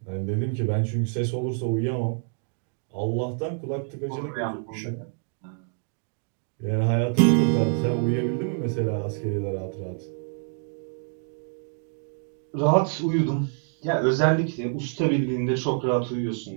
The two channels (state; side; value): silent; left; 56 dB below the other